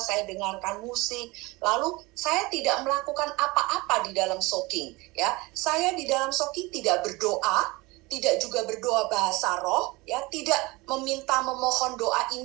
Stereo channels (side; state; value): left; quieter; 23.2 dB